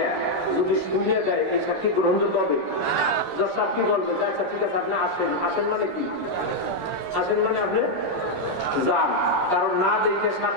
যদি শুনে দেয়, এই সাক্ষী গ্রহণযোগ্য হবে? জজ সাহেব কি বলবে? আচ্ছা ঠিক আছে, আপনি আসেন। আসেন মানে কি? আসেন মানে আপনি যান। কারণ না দেখে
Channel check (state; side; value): late; right; 11 ms